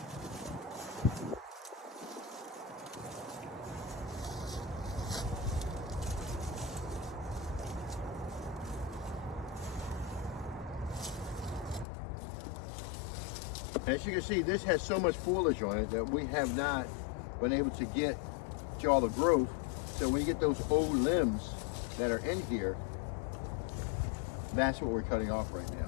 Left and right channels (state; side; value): drops out; right; at 11.9 s